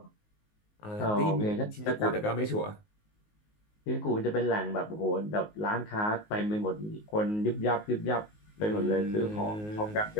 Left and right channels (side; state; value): right; late; 19 ms